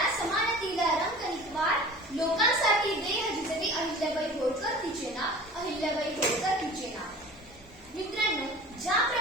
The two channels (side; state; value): both; normal; correlation 0.41